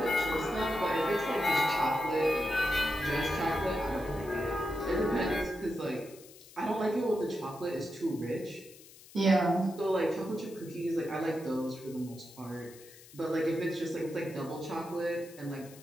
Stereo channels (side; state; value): left; noise; hiss, 21 dB below the sound